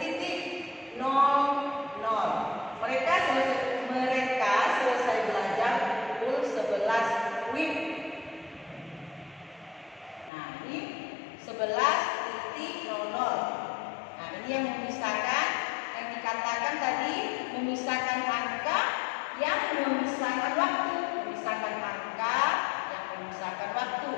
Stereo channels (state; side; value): drops out; right; at 10.3 s